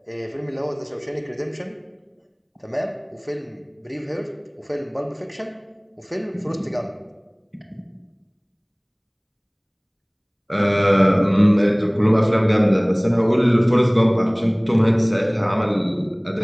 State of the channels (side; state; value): both; identical; correlation 1.00